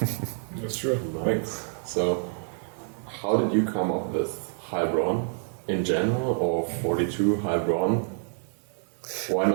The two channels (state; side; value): silent; left; digital silence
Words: That's true. Thanks. So, how did you come up with Heilbronn in general, or 42 Heilbronn? Why